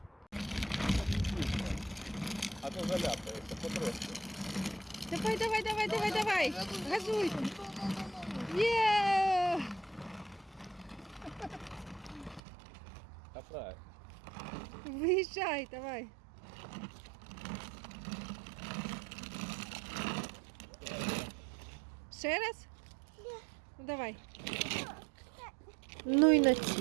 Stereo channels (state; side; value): drops out; left; at 12.4 s